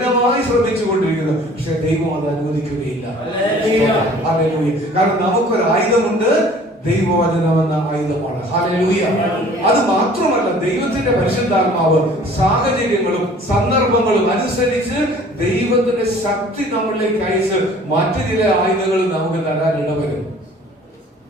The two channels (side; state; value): both; normal; correlation 0.51